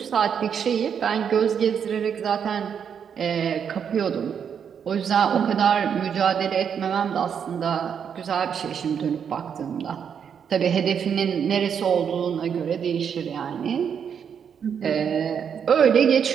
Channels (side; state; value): left; quieter; 7.6 dB